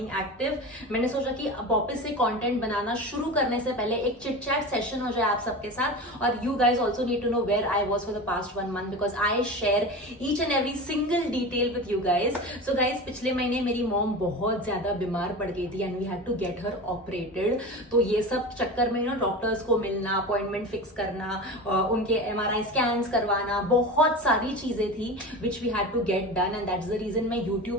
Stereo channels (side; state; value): both; normal; correlation 0.29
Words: active. मैंने सोचा कि वापस से content बनाना शुरू करने से पहले एक चिट चैट सेशन हो जाए आप सबके साथ, और you guys also need to know where I was for the past 1 month because I share each and every single detail with you guys. So guys, पिछले महीने मेरी मॉम बहुत ज्यादा बीमार पड़ गई थी and we had to get her operated. तो ये सब चक्कर में डॉक्टर्स को मिलना, अपॉइंटमेंट फिक्स करना, उनके MRI स्कैन्स करवाना, बहुत सारी चीजें थी which we had to get done, and that's the reason मैं